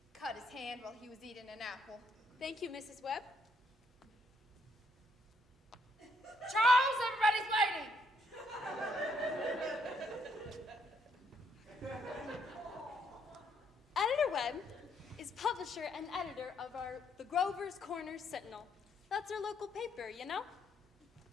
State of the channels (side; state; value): both; normal; correlation 0.72